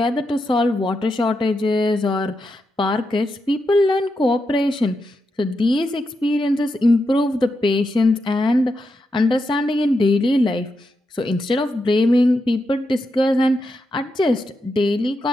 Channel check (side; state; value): both; normal; correlation 0.85